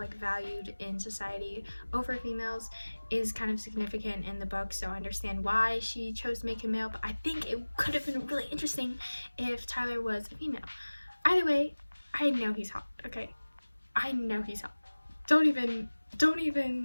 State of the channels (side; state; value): both; inverted; correlation -1.00